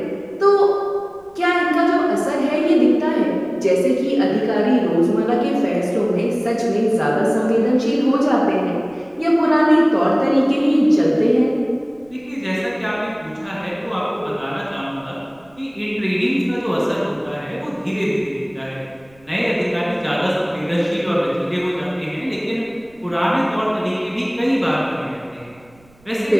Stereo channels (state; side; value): noise; right; rumble, 30 dB below the sound